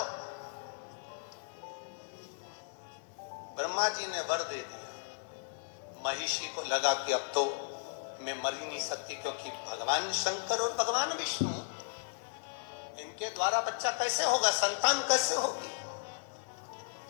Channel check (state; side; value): silent; right; 54 dB below the other